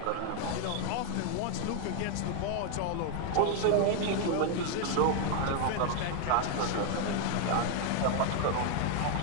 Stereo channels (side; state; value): both; different; correlation 0.00